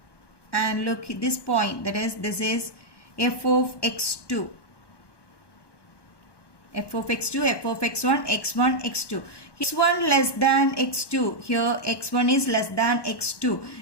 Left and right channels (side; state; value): right; late; 1.1 ms